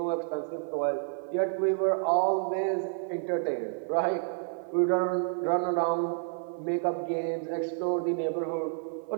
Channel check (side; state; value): left; silent; 58 dB below the other